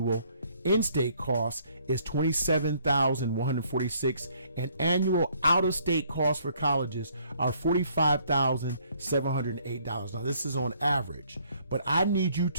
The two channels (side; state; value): both; inverted; correlation -0.64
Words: in-state cost is $27,146, and annual out-of-state costs for colleges are $45,708. Now, this is on average, but I need you